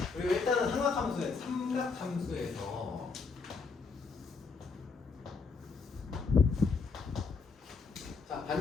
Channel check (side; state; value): right; quieter; 4.7 dB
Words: 그리고 일단은 삼각함수에서 자,